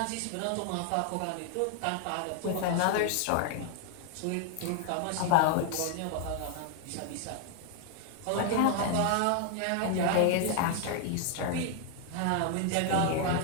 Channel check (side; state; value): both; different; correlation 0.00